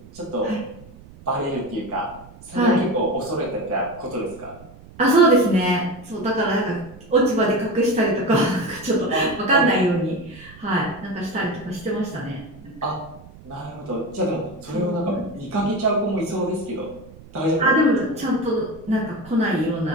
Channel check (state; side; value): noise; right; rumble, 20 dB below the sound